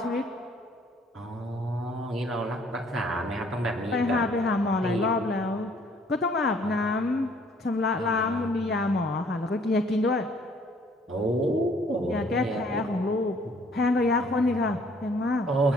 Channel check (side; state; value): both; normal; correlation 0.60